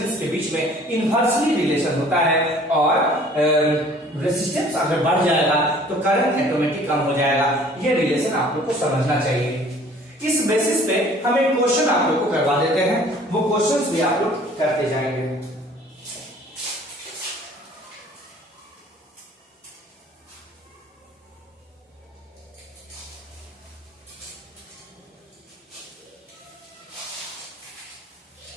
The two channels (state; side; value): normal; both; correlation 0.52